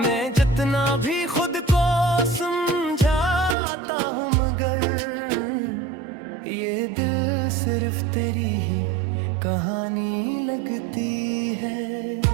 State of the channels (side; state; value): left; drops out; at 3.6 s